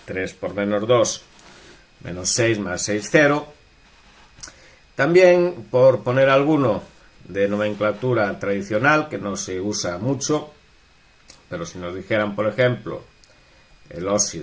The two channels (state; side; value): identical; both; correlation 1.00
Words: 3 por menos 2, menos 6 más 6, 0. También, por poner alguno de nomenclatura tradicional, que no se usa mucho, pero si nos dijeran, por ejemplo, el